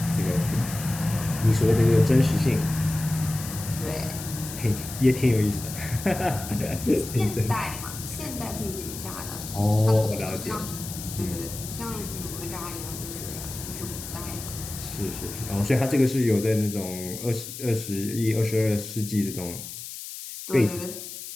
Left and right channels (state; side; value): noise; left; hiss, 10 dB below the sound